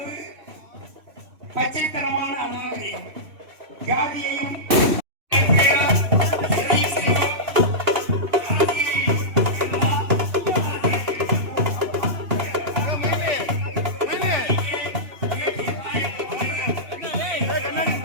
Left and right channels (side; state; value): left; late; 3.1 ms